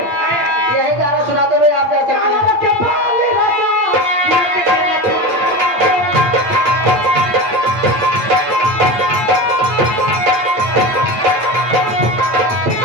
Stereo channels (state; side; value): late; left; 8.6 ms